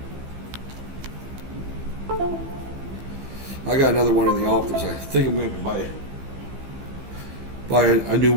I got another one in the office. I think I'm going to buy a new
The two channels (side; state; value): left; late; 15 ms